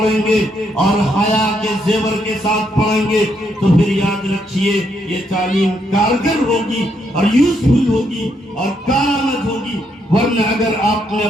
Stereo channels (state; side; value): normal; both; correlation 0.76